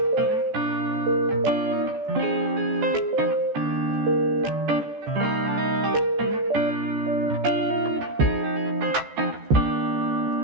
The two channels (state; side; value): late; left; 14 ms